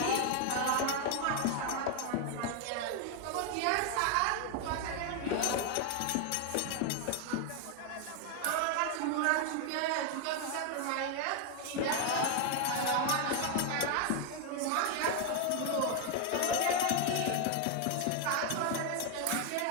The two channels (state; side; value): different; both; correlation 0.01